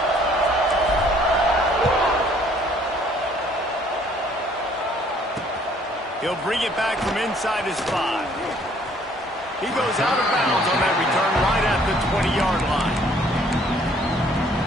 He'll bring it back from inside his 5. He goes out of bounds on that return right at the 20-yard line.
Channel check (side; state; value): both; normal; correlation 0.60